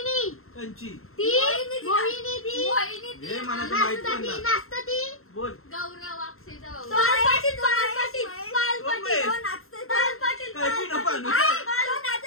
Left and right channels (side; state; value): right; late; 0.62 ms